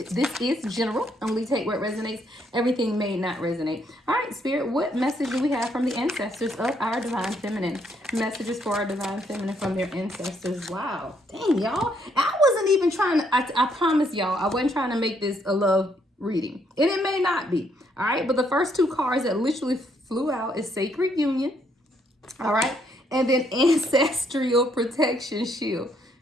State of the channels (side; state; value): both; normal; correlation 0.71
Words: is general. Only take what resonates. Everything may not resonate. All right, Spirit, what message do we have from the ancestors of our divine feminine? Messages for our divine feminine from their ancestors. Wow. Dang, y'all. I wasn't even trying to, I promise y'all, I wasn't trying to make this a love reading. And it may not be. All right, but the first two cards that literally flew out is Sacred Union. All right, and then Ancestral Protection Shield.